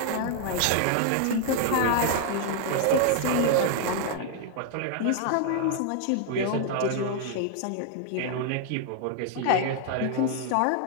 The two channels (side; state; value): both; different; correlation 0.00